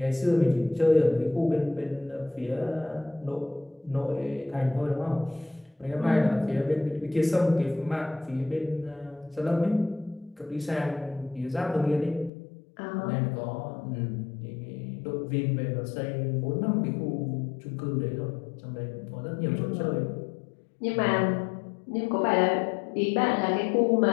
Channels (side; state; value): right; drops out; at 12.3 s